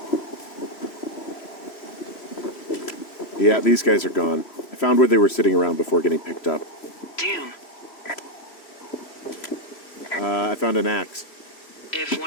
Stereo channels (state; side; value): late; right; 3.0 ms